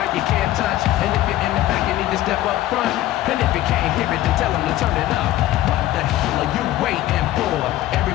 you can't touch. And if you're in the back, you need to step up front. And if you can't hear it, then tell him to turn it up. What the hell are you waiting for?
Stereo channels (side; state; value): right; quieter; 14.8 dB